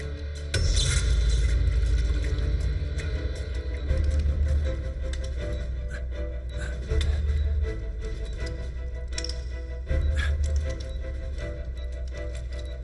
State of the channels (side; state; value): both; identical; correlation 1.00